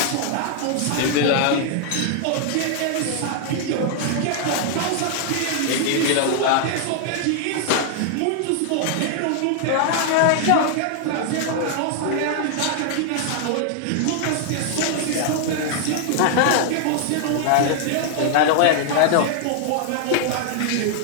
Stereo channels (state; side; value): different; both; correlation 0.00